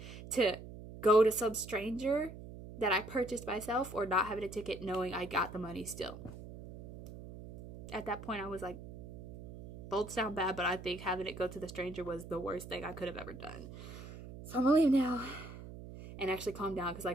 to go to some stranger that I purchased myself, or not having a ticket knowing I got the money still. At that point, I was like, both sound bad, but I think having it go to the stranger was the worst thing I could have ever done. So I'm gonna leave now and actually calm down, because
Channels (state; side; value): noise; right; hum, 13 dB below the sound